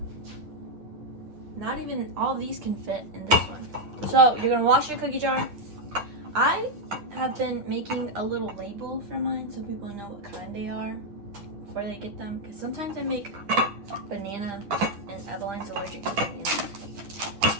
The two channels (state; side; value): late; left; 10 ms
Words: not even all of these can fit in this one. So you're gonna wash your cookie jar. I have been making a little label for mine so people know what kind they are before they get them. Because sometimes I make banana and Eveline's allergic to banana.